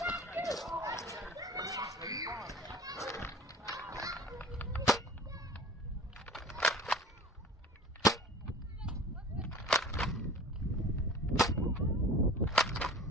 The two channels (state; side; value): normal; both; correlation 0.42